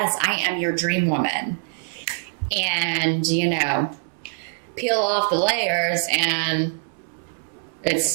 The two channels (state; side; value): silent; left; 63 dB below the other